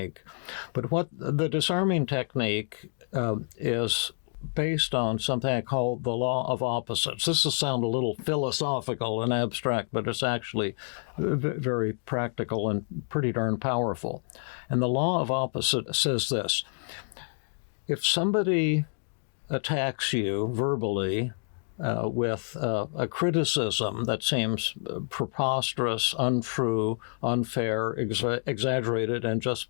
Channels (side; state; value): right; silent; digital silence